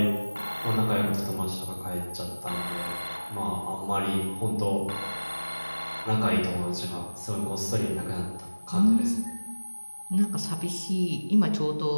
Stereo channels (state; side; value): inverted; both; correlation -1.00